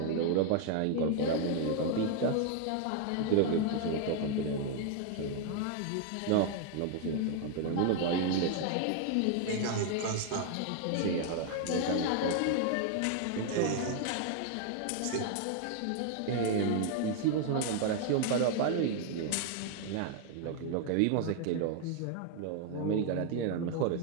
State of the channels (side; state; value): both; different; correlation 0.00